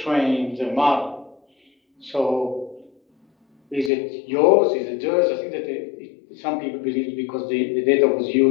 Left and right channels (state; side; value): drops out; right; at 3.9 s